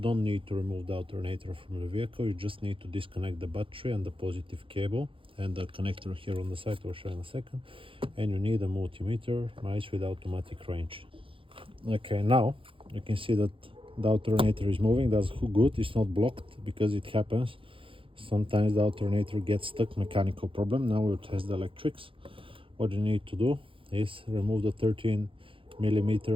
need to remove the alternator from the vehicle, you just need to disconnect the battery and the positive cable and the connector here on the side. I'll show you in a second. And you need a multimeter, nice with automatic range. Okay, now you can see that the alternator is moving. That's good, it's not blocked, because it happens. Sometimes the alternator gets stuck, mechanical problem. Now we'll test the electrics. What you need to do is remove the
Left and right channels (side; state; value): left; late; 0.25 ms